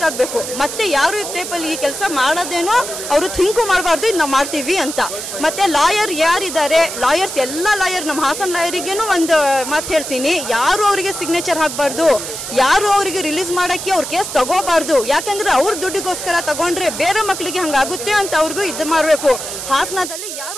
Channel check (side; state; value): right; noise; hiss, 7 dB below the sound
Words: ಆಗಬೇಕು. ಮತ್ತೆ ಯಾರು ಈ ಟೈಪಲ್ಲಿ ಈ ಕೆಲಸ ಮಾಡೋದೇನೋ ಅವರು ಥಿಂಕು ಮಾಡಬಾರ್ದು, ಇದು ನಾವು ಮಾಡ್ತೀವಿ ಅಂತ. ಮತ್ತೆ ಲಾಯರ್ ಯಾರಿದ್ದಾರೆ, ಲಾಯರ್ಸ್ ಎಲ್ಲ ಲಾಯರ್, ನಮ್ಮ ಹಾಸನ ಲಾಯರಿಗೇನು ಒಂದು ಮಾತು ಹೇಳ್ತೀನಿ, ಯಾರು ಅವರಿಗೆ ಸಿಗ್ನೇಚರ್ ಹಾಕಬಾರ್ದು, ಯಾರು ಅವರಿಗೆ ರಿಲೀಸ್ ಮಾಡೋಕ್ಕೆ ಅವ್ರ ಕೇಸ್ ತಗೋಬಾರ್ದು. ಯಾಕಂದ್ರೆ ಅವ್ರ ದುಡ್ಡಿಗೋಸ್ಕರ ತಗೊಂಡ್ರೆ ಬೇರೆ ಮಕ್ಕಳಿಗೆ ಹಂಗಾಗುತ್ತೆ ಅಂತ ಅವ್ರಿಗೂ ಇದು ಮಾಡಬೇಕು. ಹಾಸನದಲ್ಲಿ